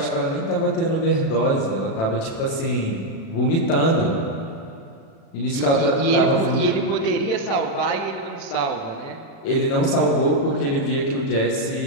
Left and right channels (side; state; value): right; late; 36 ms